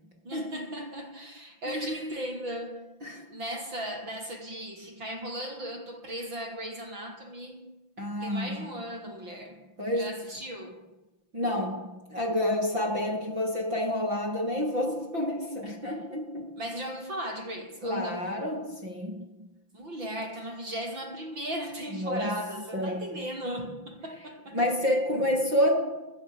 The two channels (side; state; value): left; late; 5.9 ms